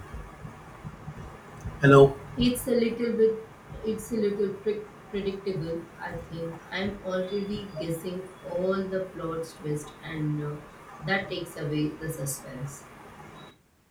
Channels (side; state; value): both; identical; correlation 1.00